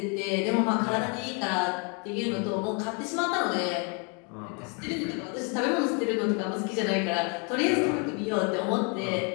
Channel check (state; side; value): quieter; right; 35.4 dB